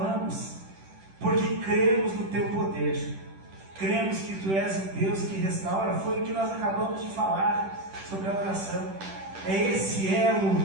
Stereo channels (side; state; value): left; late; 10 ms